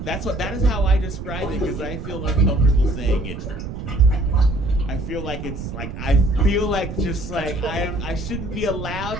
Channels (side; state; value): right; noise; rumble, 7 dB below the sound